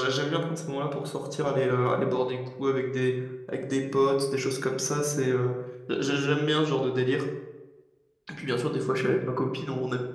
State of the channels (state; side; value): identical; both; correlation 1.00